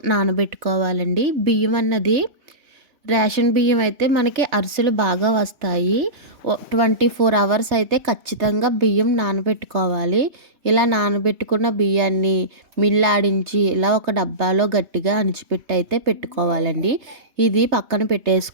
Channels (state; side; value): late; left; 3.2 ms